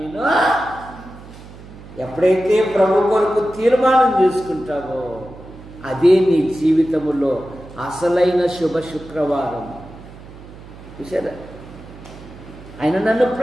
ఎప్పుడైతే ప్రభు కొరకు తీర్మానం చేసుకుంటావో అదే నీ జీవితములో అసలైన శుభ శుక్రవారం. చూసారా, ఆయన నన్ను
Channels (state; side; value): noise; right; hum, 18 dB below the sound